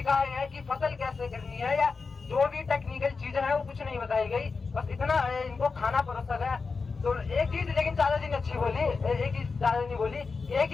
कि फसल कैसे करनी है या जो भी टेक्निकल चीजें हैं वो कुछ नहीं बताई गई, बस इतना इनको खाना परोसा गया। तो एक चीज लेकिन चाचा जी ने अच्छी बोली, एक चीज चाचा जी बोली, एक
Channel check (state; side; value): quieter; right; 4.6 dB